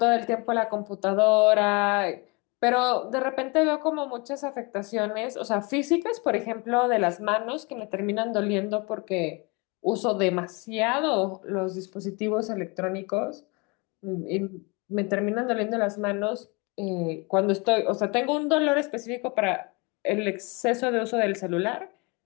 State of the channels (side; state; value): right; quieter; 29.0 dB